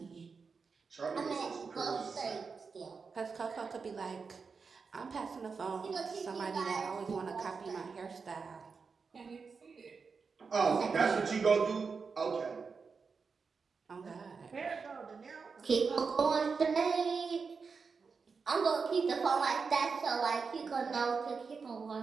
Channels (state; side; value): quieter; left; 5.1 dB